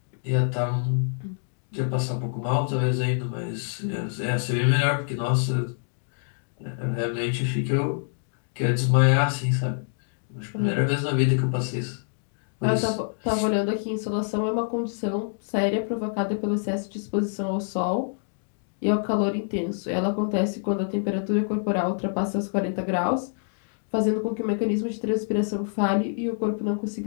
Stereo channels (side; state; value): right; silent; digital silence